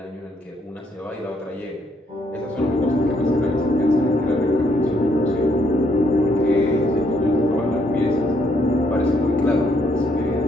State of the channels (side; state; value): both; normal; correlation 0.71